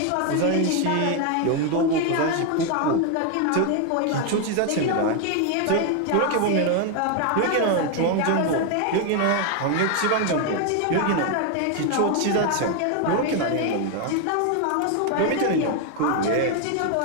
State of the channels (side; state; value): both; different; correlation 0.01